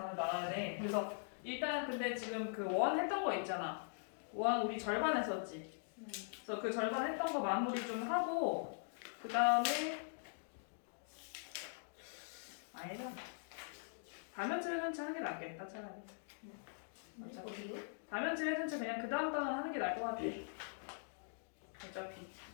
나가야 돼. 그래서 일단 근데 지금 그 원 했던 거 있잖아. 원 우리 절반 했었지. 그래서 그 절반 했던 거 마무리 좀 하고 그 다음에 아니다. 다면체 회전체 하는 게 낫겠다 차라리. 어디요? 다면체 회전체 그냥 그 다음 단어 하는 게 나을 것 같아. 어차피.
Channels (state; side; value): silent; right; digital silence